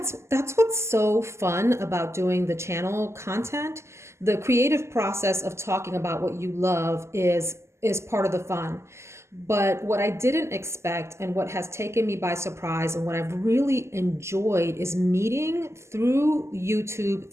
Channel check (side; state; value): left; late; 0.13 ms